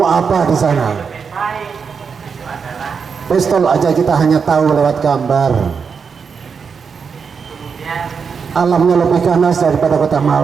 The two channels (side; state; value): left; quieter; 5.9 dB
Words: apa di sana? Pistol aja kita hanya tahu lewat gambar. Alamnya lebih ganas daripada kota